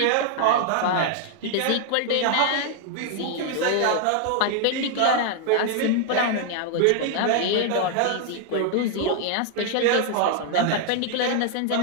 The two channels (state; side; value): different; both; correlation 0.00